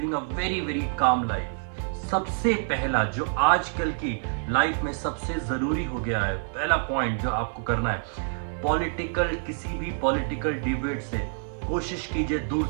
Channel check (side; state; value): left; silent; digital silence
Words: a very very calm life. सबसे पहला जो आजकल की लाइफ में सबसे जरूरी हो गया है, पहला पॉइंट जो आपको करना है, किसी भी पॉलिटिकल डिबेट से कोशिश कीजिए दूर